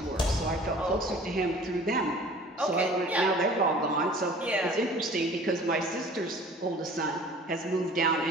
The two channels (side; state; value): both; normal; correlation 0.47